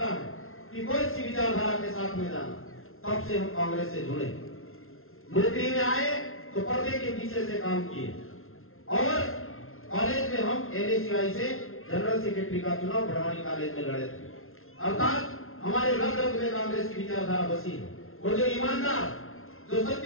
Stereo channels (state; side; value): late; right; 0.61 ms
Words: है कि कोई सी विचारधारा के साथ में जाना, तब से हम कांग्रेस से जुड़े। नौकरी में आए तो पर्दे के पीछे से काम किए, और कॉलेज में हम NSCI से जनरल सेक्रेटरी का चुनाव बड़वानी कॉलेज में लड़े थे। अर्थात हमारे रग रग में कांग्रेस की विचारधारा बसी है, और जो ईमानदार, जो